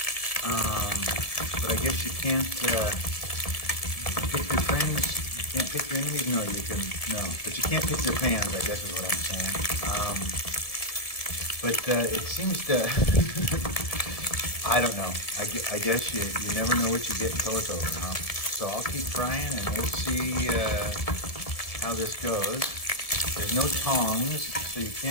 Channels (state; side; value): late; right; 1.7 ms